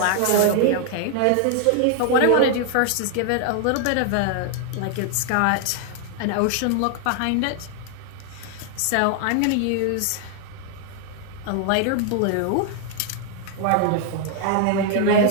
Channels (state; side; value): different; both; correlation 0.00